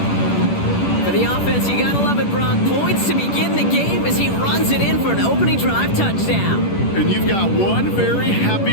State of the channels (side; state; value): right; late; 10 ms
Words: For the offense, you gotta love it, Brock. Points to begin the game as he runs it in for an opening drive touchdown. And you've got one very